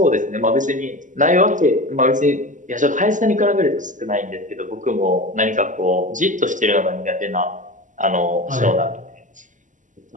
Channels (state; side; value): late; left; 0.37 ms